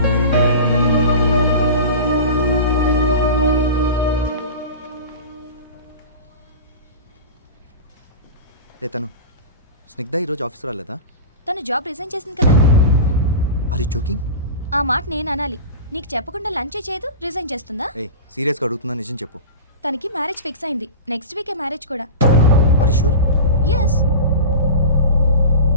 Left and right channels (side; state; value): both; inverted; correlation -0.30